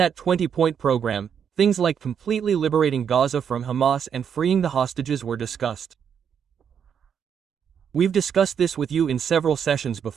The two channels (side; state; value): left; quieter; 7.7 dB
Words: 20-point program, things like completely liberating Gaza from Hamas and freeing the hostages were discussed. We've discussed this with you in several sessions